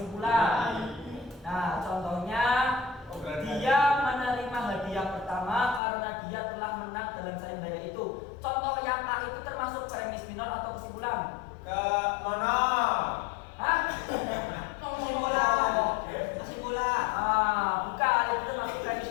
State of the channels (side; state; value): right; drops out; at 5.8 s